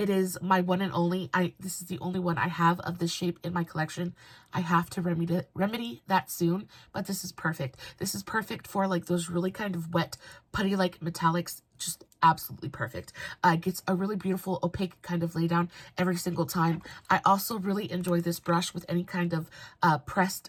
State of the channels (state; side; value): identical; both; correlation 1.00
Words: is my one and only. This is the only one I have of this shape in my collection. I have to remedy that soon, but this is perfect. This is perfect for like those really kind of wet putty like metallics. Just absolutely perfect. Gets a really beautiful opaque kind of lay down every single time. I also really enjoy this brush with any kind of